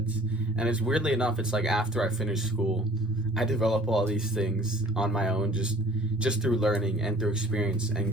And it's weirdly enough, it's like after I finished school, I develop all these things on my own, just through learning and through experience and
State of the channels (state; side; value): normal; both; correlation 0.52